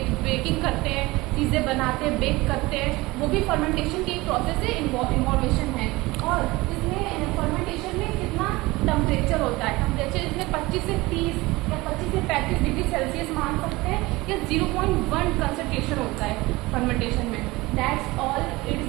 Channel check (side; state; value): left; quieter; 21.2 dB